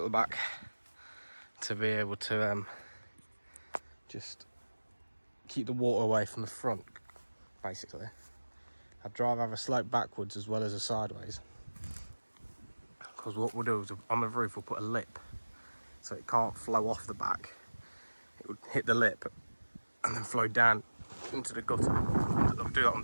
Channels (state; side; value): inverted; both; correlation -1.00